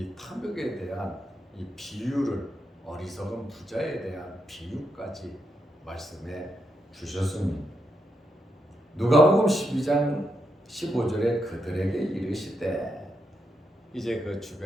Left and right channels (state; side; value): normal; both; correlation 0.82